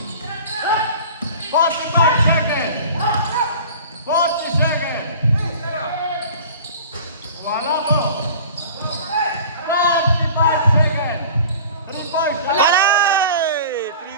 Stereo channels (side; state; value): both; inverted; correlation -0.42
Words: 45 seconds. 40 seconds. Wala ko. 45 seconds. 3 points. Patay!